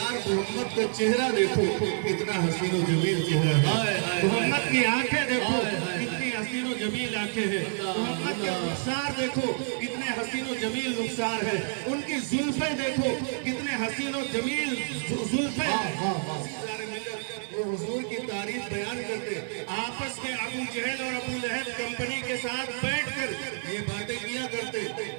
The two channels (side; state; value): left; silent; 59 dB below the other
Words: محمد کا چہرہ دیکھو کتنا حسین و جمیل چہرہ ہے، محمد کی آنکھیں دیکھو کتنی حسین و جمیل آنکھیں ہیں، محمد کے رخسار دیکھو کتنے حسین و جمیل رخسار ہے، ان کی زلفیں دیکھو کتنے حسین و جمیل زلفیں ہیں۔ وہ حضور کی تعریف بیان کرتے، آپس میں ابو جہل اور ابو لہب کمپنی کے ساتھ بیٹھ کر یہ باتیں کیا کرتے،